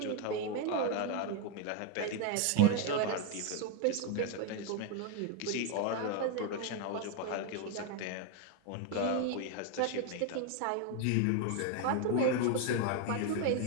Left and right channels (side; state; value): both; different; correlation 0.01